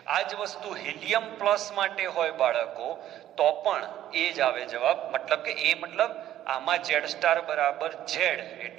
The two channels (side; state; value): left; quieter; 12.4 dB